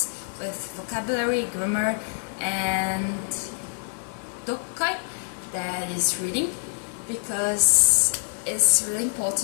with vocabulary, grammar, and dokai, that is reading, because it's really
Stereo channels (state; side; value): silent; right; digital silence